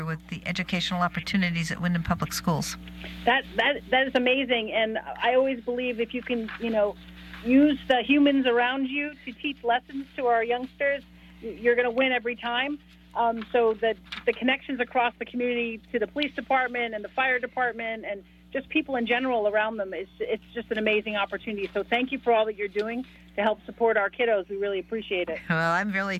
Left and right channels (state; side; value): identical; both; correlation 1.00